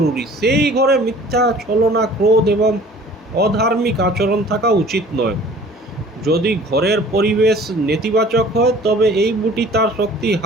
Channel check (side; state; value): both; normal; correlation 0.49